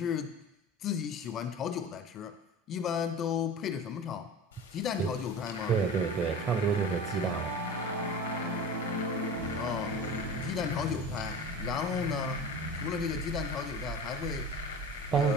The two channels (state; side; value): normal; both; correlation 0.34